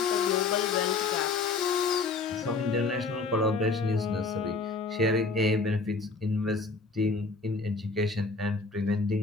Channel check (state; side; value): quieter; right; 4.1 dB